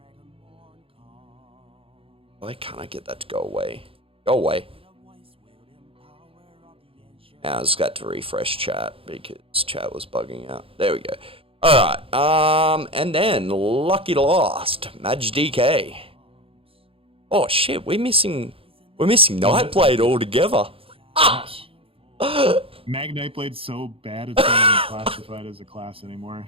Why can't I get that to go away? Go away. Now I just got to refresh chat because chat was bugging out. There we go. Alright, and then Lucky Lost, Maj DK. Oh shit, we're missing Nightblade altogether. Gosh. Mag Nightblade's so bad it's not even classified as a class anymore.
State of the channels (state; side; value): late; left; 0.27 ms